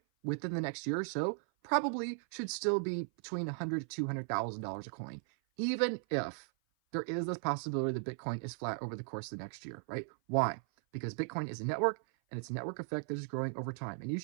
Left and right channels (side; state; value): left; silent; 53 dB below the other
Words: within the next year or so probably should still be between $100,000 to $200,000 a coin, even if there is this possibility that Bitcoin is flat over the course of the next year, right? Why? Because Bitcoin is a network, and it's a network effect that is growing over time. And you